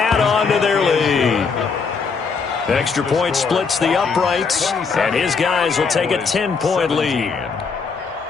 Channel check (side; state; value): right; quieter; 5.2 dB